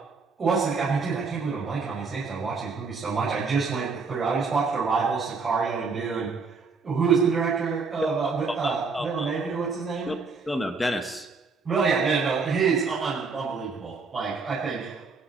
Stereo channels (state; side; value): quieter; left; 4.7 dB